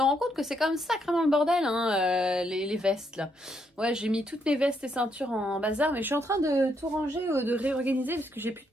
rends compte que c'est quand même sacrément le bordel, hein, les vestes là. Ouais, j'ai mis toutes mes vestes et ceintures en bazar, mais je suis en train de tout ranger, de réorganiser parce que j'ai plus de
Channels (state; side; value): normal; both; correlation 0.75